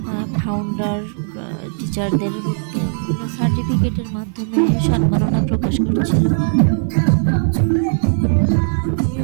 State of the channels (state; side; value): silent; left; 55 dB below the other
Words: ফাউন্ডার টিচারদের সার্টিফিকেটের মাধ্যমে সম্মাননা প্রকাশ করছিল।